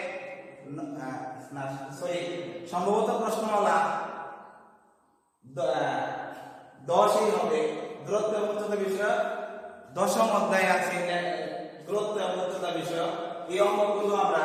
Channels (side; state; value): both; identical; correlation 1.00